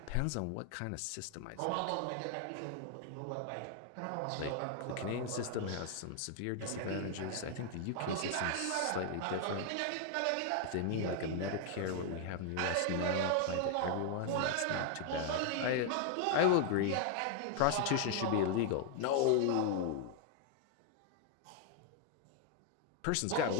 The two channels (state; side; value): different; both; correlation 0.00